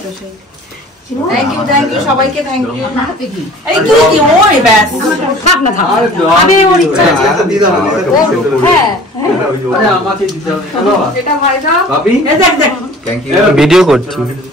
তো সেই থ্যাংক ইউ সবাইকে থ্যাংক ইউ এই তুই কি ওই ব্যাস থাক না থাক আমি ওর ইচ্ছা আছে दी दो হ্যাঁ আরে আমাকে দিতে হবে চলো এটা ভাই দাও भाभी এই দেখ দেখ थैंक यू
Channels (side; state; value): both; normal; correlation 0.46